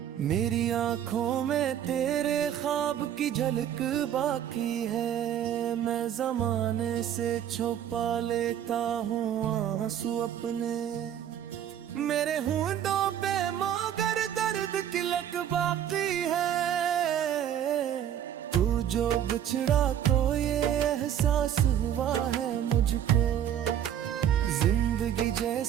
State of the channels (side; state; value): left; quieter; 10.1 dB